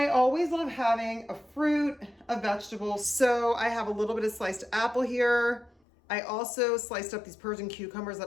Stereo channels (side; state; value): right; drops out; at 5.7 s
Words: always love having a fruit, a vegetable. So I have a little bit of sliced apple here. I also sliced up these Persian cucumbers